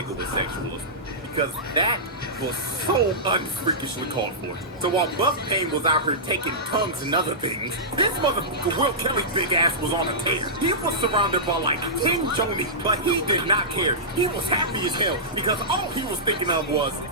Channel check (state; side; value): normal; both; correlation -0.16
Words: with sexualism. Because that was so unfreakishly called for. So while Buff Pain was out here taking tongues and other things, this motherfucker Will Kelly's big ass was on a tear. He was surrounded by like 10 Johnny, but he did not care. He was happy as hell because all he was thinking of was,